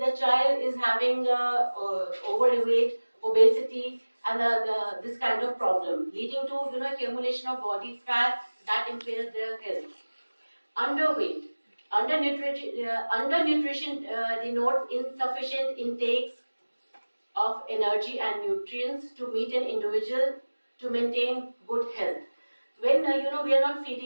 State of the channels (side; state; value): both; inverted; correlation -1.00